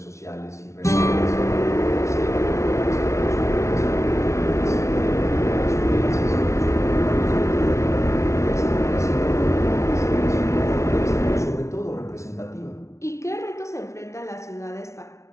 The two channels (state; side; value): late; right; 0.14 ms